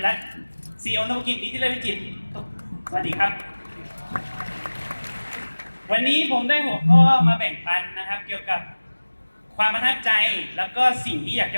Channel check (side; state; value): both; inverted; correlation -1.00